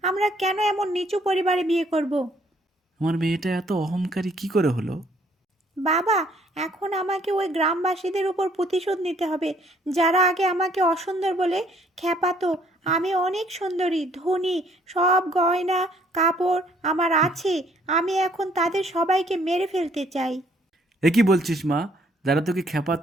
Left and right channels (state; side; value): normal; both; correlation 0.63